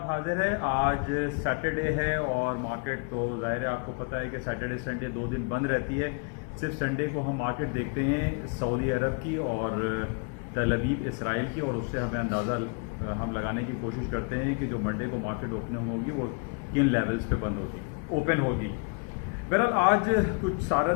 حاضر ہے۔ آج سیٹرڈے ہے اور مارکیٹ تو ظاہر ہے آپ کو پتہ ہے کہ سیٹرڈے سنڈے 2 دن بند رہتی ہے۔ صرف سنڈے کو ہم مارکیٹ دیکھتے ہیں سعودی عرب کی اور تل ابیب اسرائیل کی، اور اس سے ہمیں اندازہ ہم لگانے کی کوشش کرتے ہیں کہ جو منڈے کو مارکیٹ اوپننگ ہوگی وہ کن لیولز پہ بند ہوگی، اوپن ہوگی۔ بہرحال آج کچھ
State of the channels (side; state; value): right; quieter; 35.7 dB